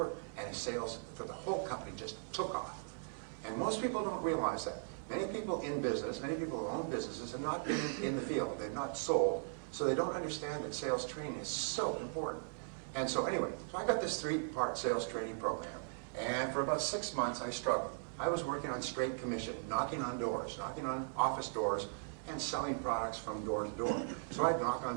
And his sales for the whole company just took off. And most people don't realize that. Many people in business, many people who own businesses have not been in the field. They've not sold. So they don't understand that sales training is so important. And so anyway, so I got this 3-part sales training program. And for about 6 months, I struggled. I was working on straight commission, knocking on doors, knocking on office doors, and selling products from door to door. So I'd knock on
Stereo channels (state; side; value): silent; left; 52 dB below the other